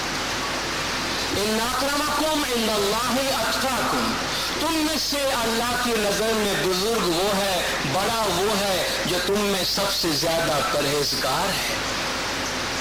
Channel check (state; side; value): identical; both; correlation 1.00